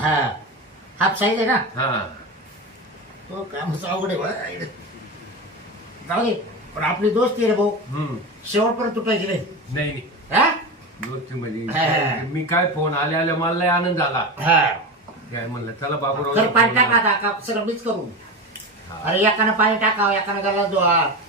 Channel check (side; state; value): both; normal; correlation 0.23